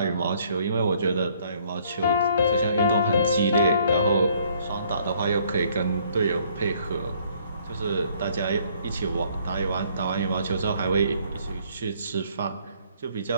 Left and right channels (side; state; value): both; inverted; correlation -0.63